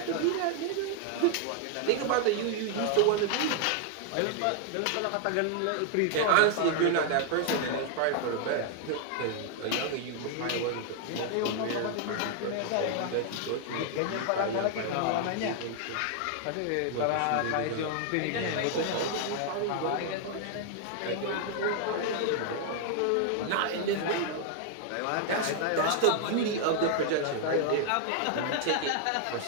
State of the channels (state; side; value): different; both; correlation 0.00